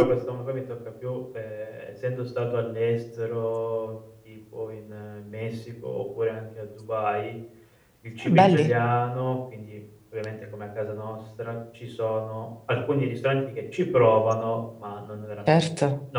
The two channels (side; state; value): both; identical; correlation 1.00